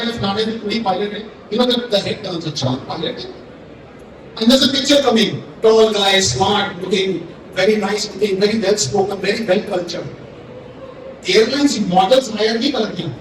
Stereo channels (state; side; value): identical; both; correlation 1.00